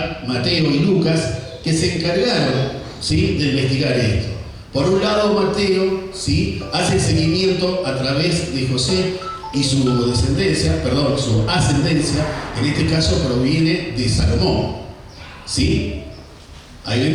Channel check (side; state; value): both; identical; correlation 1.00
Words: y Lucas, que se encargaron, ¿sí?, de investigar esto. Por un lado, Mateo, ¿sí?, hace el seguimiento a través de José y su descendencia, su ascendencia, en este caso proviene de Salomón, ¿sí? Ahí